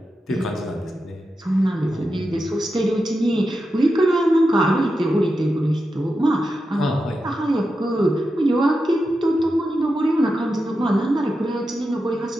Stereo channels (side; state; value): both; normal; correlation 0.89